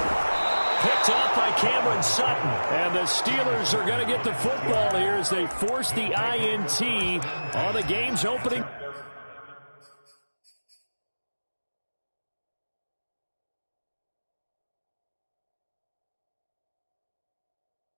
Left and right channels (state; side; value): inverted; both; correlation -1.00